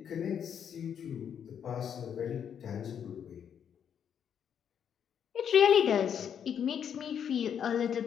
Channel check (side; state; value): right; quieter; 8.3 dB